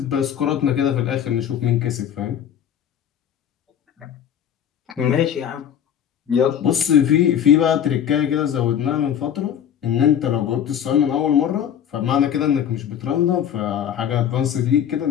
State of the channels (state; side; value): quieter; right; 9.3 dB